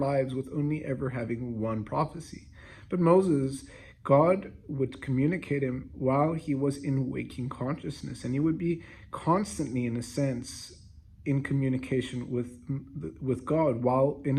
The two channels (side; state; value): both; identical; correlation 1.00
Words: with only ever having one prophecy. But Moses, God would communicate him while he was in waking consciousness, and he would be constantly, in a sense, in communication with God while in